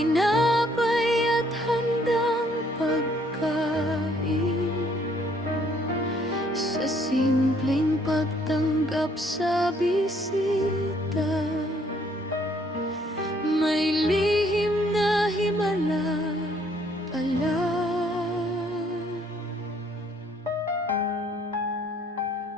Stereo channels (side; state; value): both; normal; correlation 0.64